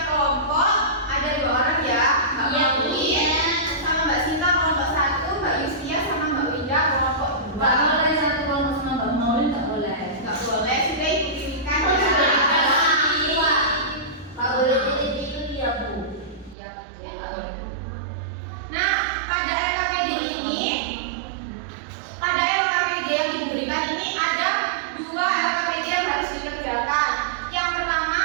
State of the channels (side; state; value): left; drops out; at 16.6 s